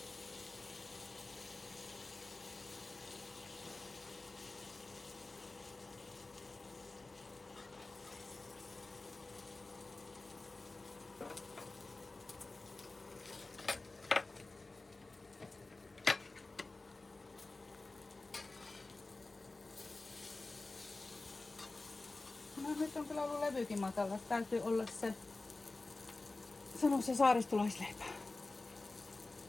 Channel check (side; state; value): right; quieter; 3.3 dB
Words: on kyllä ollut levykin matala. Täytyy olla se, sano se saaristolaisleipä.